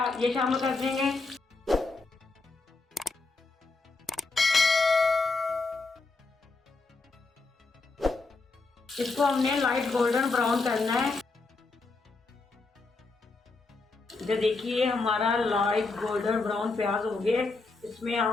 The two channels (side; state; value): right; quieter; 3.7 dB